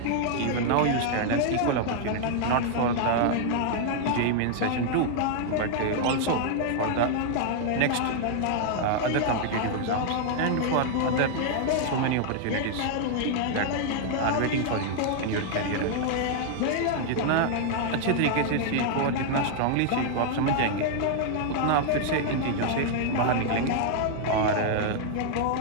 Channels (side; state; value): both; different; correlation 0.00